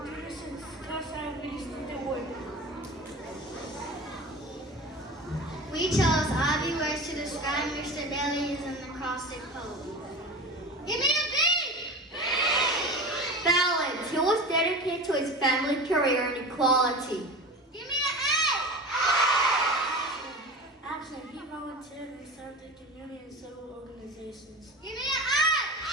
class abilities to the work. We chose obvious words to describe Mr. Bailey's an acrostic poem. Give me a B! Balance. He was dedicated to his family, career, and equality. Give me an A! Action. He volunteered and served the community in several organizations. Give me an I!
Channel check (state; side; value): normal; both; correlation 0.31